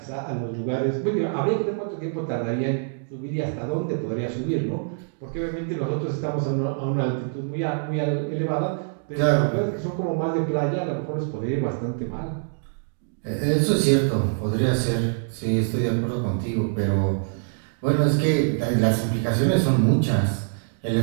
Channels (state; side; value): silent; left; digital silence